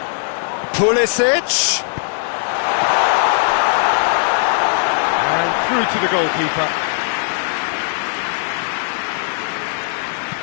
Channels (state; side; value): silent; right; digital silence